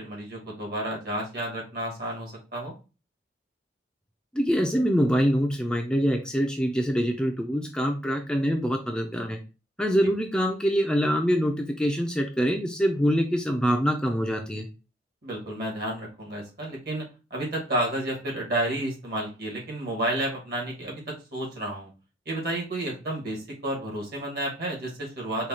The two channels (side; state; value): both; normal; correlation 0.73